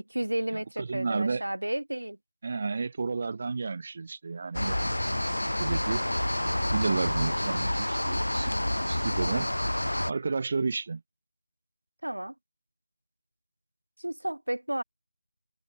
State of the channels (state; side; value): inverted; both; correlation -0.97